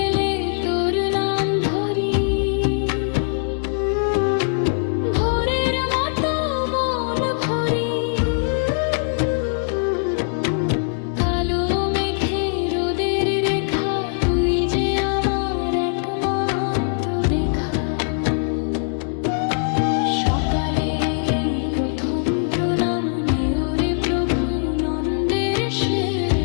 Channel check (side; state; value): right; silent; digital silence